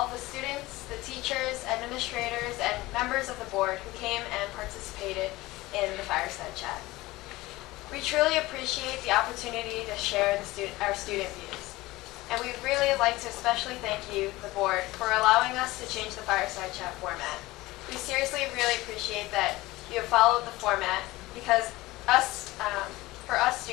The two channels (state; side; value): quieter; right; 19.3 dB